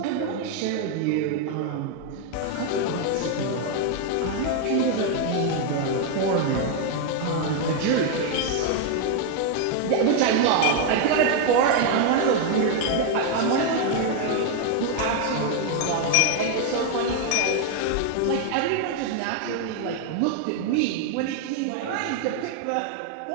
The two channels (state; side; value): different; both; correlation 0.00